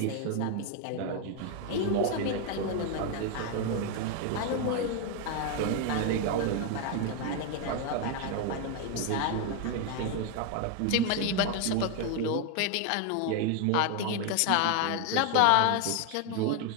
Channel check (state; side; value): different; both; correlation 0.01